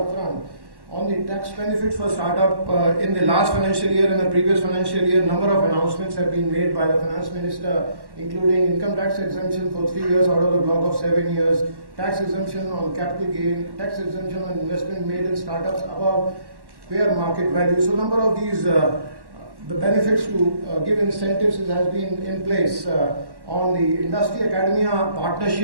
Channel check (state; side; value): late; left; 1.1 ms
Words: front. On the tax benefits for startup, in the last financial year and the previous financial year, number of announcements have been made by the Finance Minister, including income tax exemption for 3 years out of the block of 7 years, tax exemption on capital gain, tax exemption on investment made in startups above fair market value. So number of these the benefits to give incentives has been in place. On the industry academia